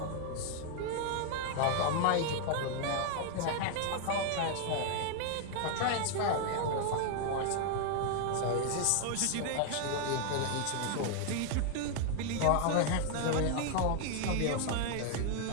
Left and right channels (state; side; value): different; both; correlation 0.00